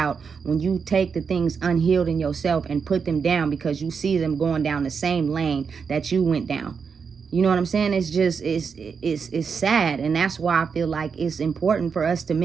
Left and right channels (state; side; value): quieter; left; 5.9 dB